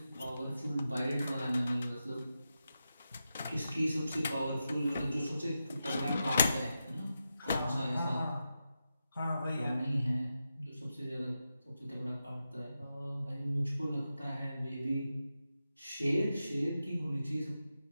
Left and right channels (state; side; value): inverted; both; correlation -0.89